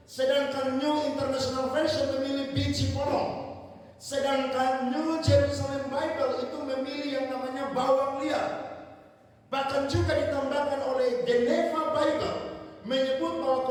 Sedangkan New International Version memilih biji polong. Sedangkan New Jerusalem Bible itu memilih yang namanya bawang liar. Bahkan juga ditambahkan oleh Geneva Bible menyebut bahwa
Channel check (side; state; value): both; identical; correlation 1.00